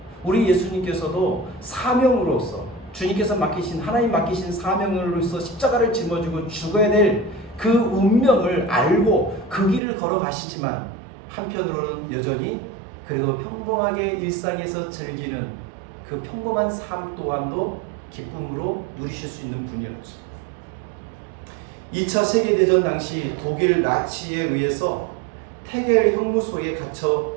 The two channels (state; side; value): drops out; left; at 9.8 s